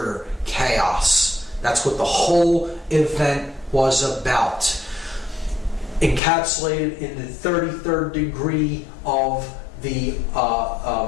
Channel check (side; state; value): right; drops out; at 6.2 s